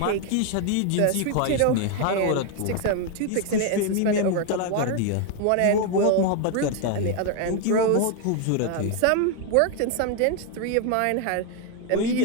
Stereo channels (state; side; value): different; both; correlation 0.01